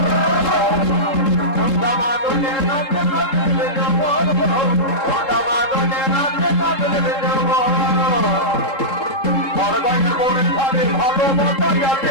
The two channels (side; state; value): right; late; 3.7 ms